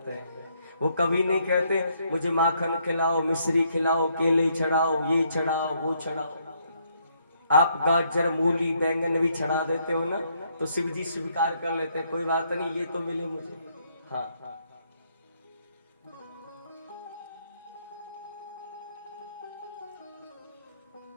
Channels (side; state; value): both; inverted; correlation -0.72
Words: हैं। वो कभी नहीं कहते मुझे माखन खिलाओ, मिश्री खिलाओ, केले चढ़ाओ, ये चढ़ाओ, वो चढ़ाओ। आप गाजर, मूली, बैंगन भी चढ़ा देते हो ना तो शिव जी स्वीकार कर लेते हैं, कोई बात नहीं, ये तो मिले मुझे। हाँ,